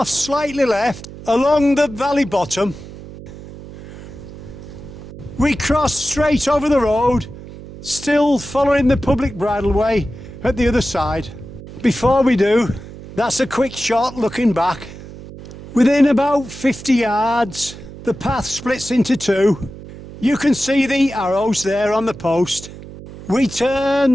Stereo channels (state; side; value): noise; right; hum, 15 dB below the sound